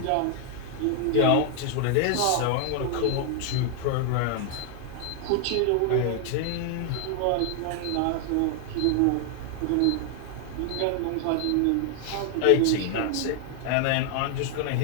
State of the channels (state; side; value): different; both; correlation 0.00